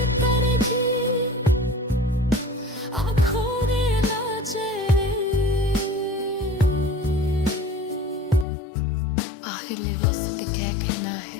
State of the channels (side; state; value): right; drops out; at 8.5 s